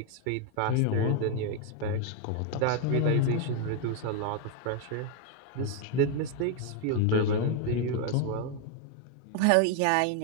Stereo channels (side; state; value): both; different; correlation 0.01